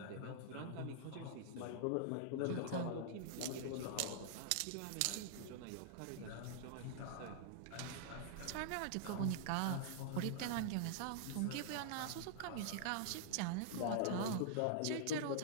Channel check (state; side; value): different; both; correlation -0.01